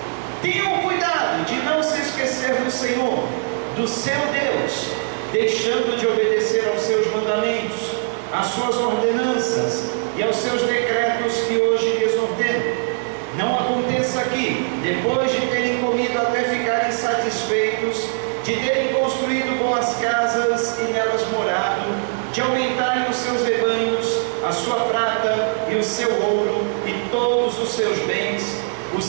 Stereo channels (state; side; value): silent; left; 65 dB below the other